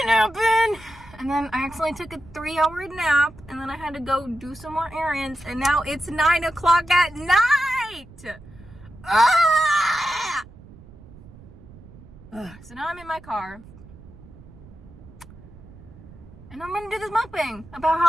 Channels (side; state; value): right; noise; rumble, 20 dB below the sound